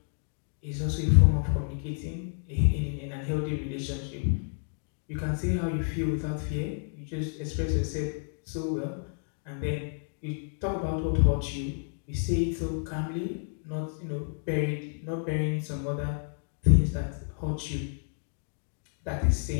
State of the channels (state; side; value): silent; right; digital silence